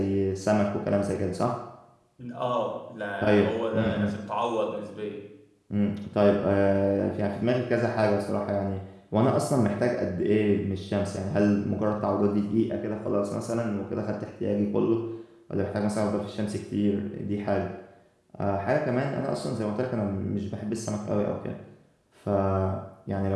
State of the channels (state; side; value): identical; both; correlation 1.00